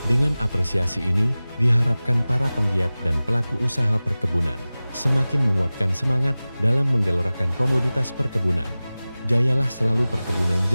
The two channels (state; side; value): inverted; both; correlation -0.98